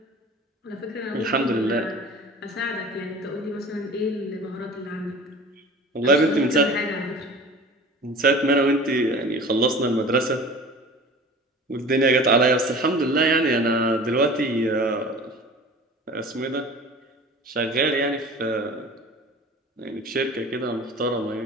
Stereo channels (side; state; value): both; normal; correlation 0.40